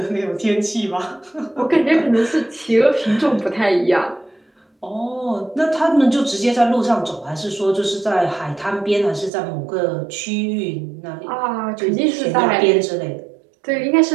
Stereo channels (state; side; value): drops out; left; at 9.3 s